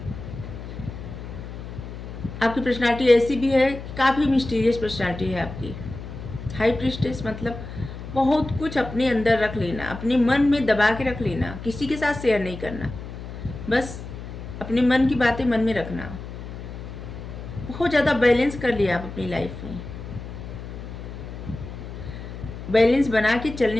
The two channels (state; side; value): noise; left; hum, 10 dB below the sound